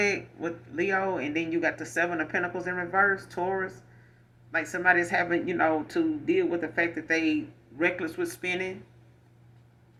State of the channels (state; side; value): identical; both; correlation 1.00